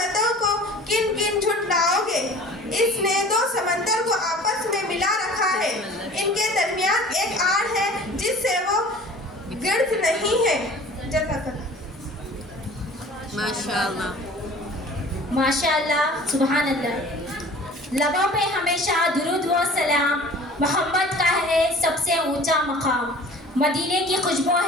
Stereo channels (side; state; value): both; normal; correlation 0.45